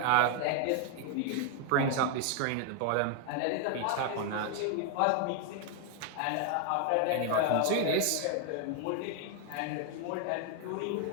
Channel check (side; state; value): both; different; correlation 0.00